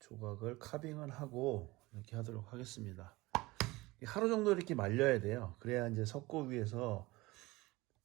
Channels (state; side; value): quieter; left; 21.0 dB